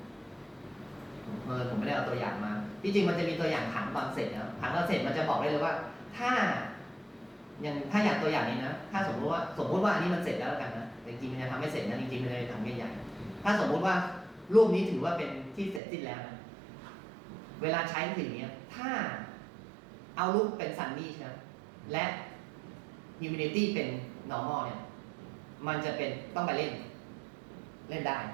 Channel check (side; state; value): left; drops out; at 15.8 s